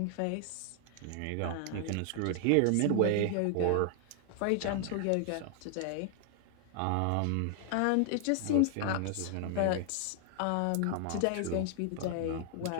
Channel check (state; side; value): different; both; correlation 0.00